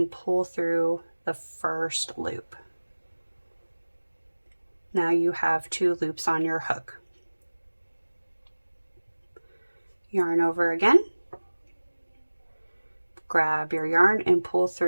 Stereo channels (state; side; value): inverted; both; correlation -1.00